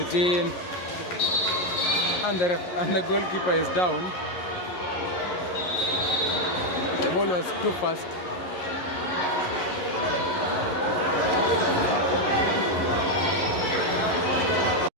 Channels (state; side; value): late; right; 11 ms